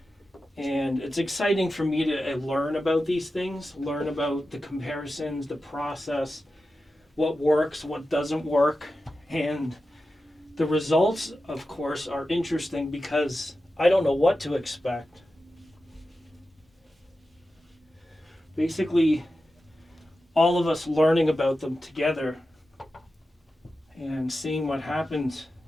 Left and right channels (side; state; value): both; normal; correlation 0.92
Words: And it's exciting for me to learn about these things, learn about the comparisons, the process, what works, what doesn't work. And the results, of course, are interesting because I don't know what to expect. Basically, all of us learning about them together and seeing what happens